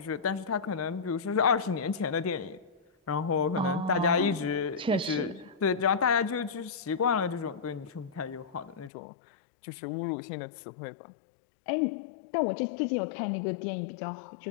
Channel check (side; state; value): right; drops out; at 8.9 s